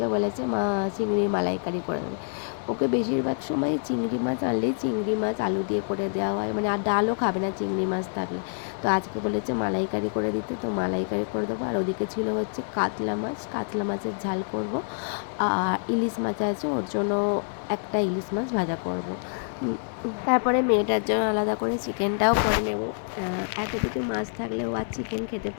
বলেছে মা চিংড়ির মালাইকারি করে দেবে। ওকে বেশিরভাগ সময় চিংড়ি মাছ আনলেই চিংড়ি মাছ আলু দিয়ে করে দেওয়া হয়, মানে আর ডালও খাবে না চিংড়ি মাছ থাকলে। তো আজকে বলেছে মালাইকারি করে দিতে, তো মালাইকারি করে দেবো। আর ওদিকে ছিল হচ্ছে কাতলা মাছ, কাতলা মাছের ঝাল করব। আর ইলিশ মাছ আছে, ওর জন্য একটা ইলিশ মাছ ভাজা করব। তারপরে মেয়েটার জন্য আলাদা করে চিকেনটাও করে নেব। এত কিছু মাছ থাকলেও আর চিকেন খেতে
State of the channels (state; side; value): silent; right; 56 dB below the other